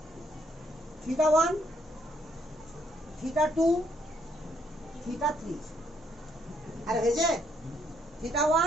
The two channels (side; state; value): both; normal; correlation 0.71